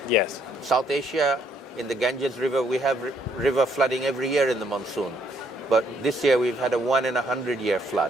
Yes. South Asia, in the Ganges River, we have river flooding every year in the monsoon. But this year we've had a 1 in 100-year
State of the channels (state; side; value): normal; both; correlation 0.69